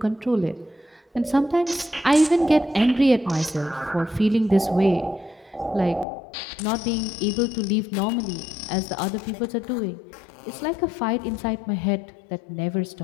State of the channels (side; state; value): right; drops out; at 6.1 s